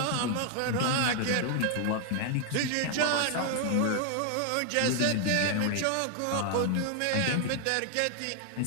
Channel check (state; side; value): different; both; correlation 0.00